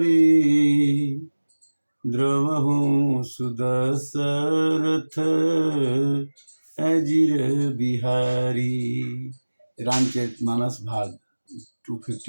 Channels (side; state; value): both; inverted; correlation -1.00